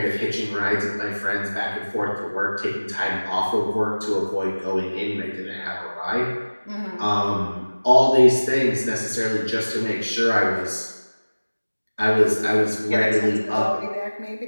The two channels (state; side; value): inverted; both; correlation -1.00